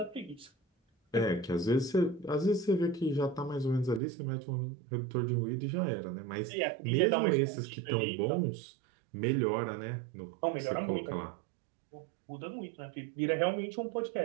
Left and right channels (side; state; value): left; drops out; at 4.0 s